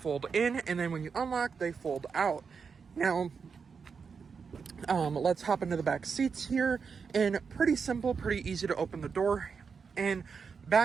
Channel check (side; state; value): left; quieter; 5.7 dB